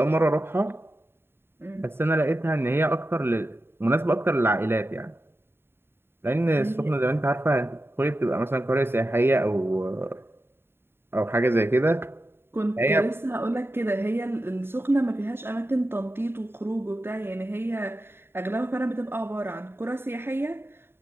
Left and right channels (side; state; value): left; late; 0.11 ms